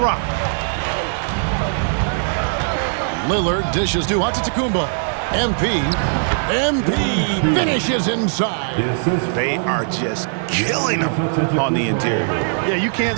Lillard dishes to Antetokounmpo. MP MP finishes inside. They are just killing them on the interior. Yeah, you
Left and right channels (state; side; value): silent; left; digital silence